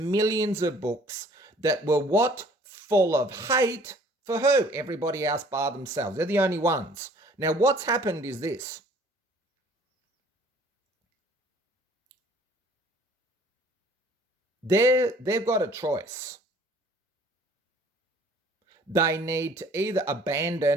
millions of books that were what? Full of hate for who? Everybody else bar themselves. They're the only ones. Now, what's happened is this. They've got a choice. They need to either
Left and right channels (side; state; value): both; normal; correlation 0.55